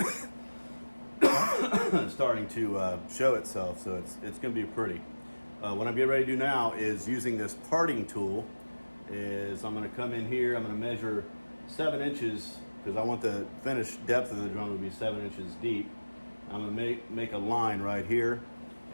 starting to show itself, so it's gonna be pretty. What I'm getting ready to do now is using this parting tool is I'm gonna come in here, I'm gonna measure 7 inches because I want the finished depth of the drum to be 7 inches deep. I'm gonna make a line right here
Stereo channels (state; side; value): inverted; both; correlation -1.00